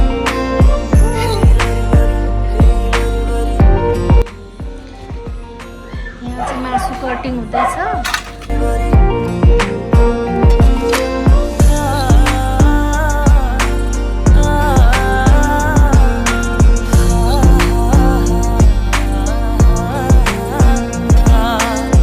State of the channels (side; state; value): both; identical; correlation 1.00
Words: यहाँ चाहिँ मासु कटिङ हुँदैछ।